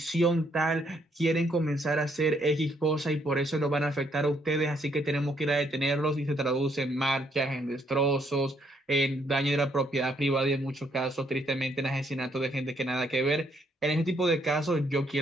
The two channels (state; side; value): normal; both; correlation 0.71